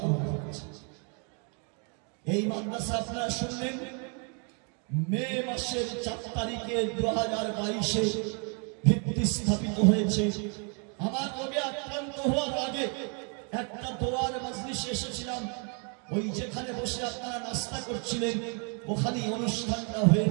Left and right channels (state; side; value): quieter; left; 38.5 dB